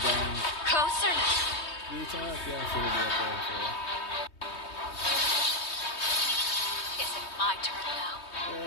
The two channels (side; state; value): right; late; 3.2 ms